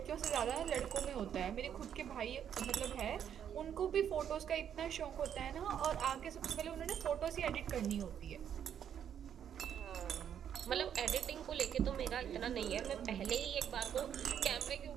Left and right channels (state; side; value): quieter; left; 9.0 dB